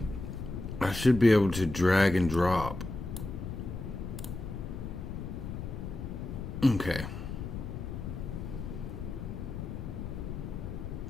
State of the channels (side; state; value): left; noise; rumble, 6 dB below the sound